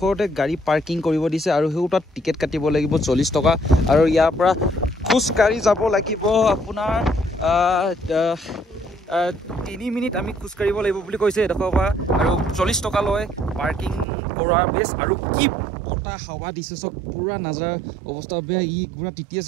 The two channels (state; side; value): drops out; left; at 14.1 s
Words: গাড়ী পাৰ্কিং কৰিব দিছে আৰু সেই তাত টিকেট কাটিব লাগিব 40 টকা আৰু ইয়াৰ পৰা খোজকাঢ়ি যাব লাগিব আপোনাৰ 3 মিনিট আমি খোজকাঢ়িব লাগিব বুলি কৈছে এডখৰ পৰা আৰু 40 টকা লয় পাৰ্কিং কৰাৰ বেছ আৰু কি বতাহ হাৱা দিছে চক পুৰা নাজাৰ অৱস্থা বেয়া ই পুৰা তিতি